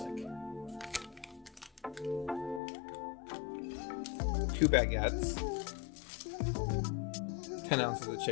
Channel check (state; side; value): drops out; right; at 2.6 s